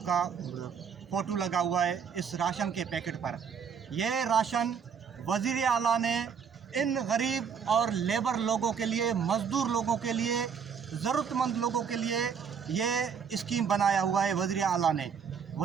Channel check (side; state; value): left; quieter; 6.8 dB